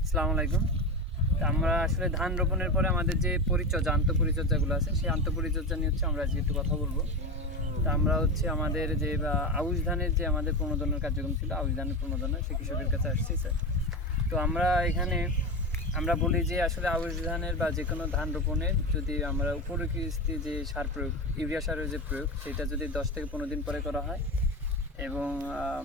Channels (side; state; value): both; normal; correlation 0.21